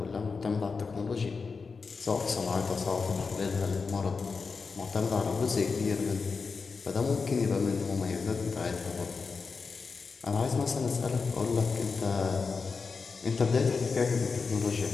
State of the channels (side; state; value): right; quieter; 4.8 dB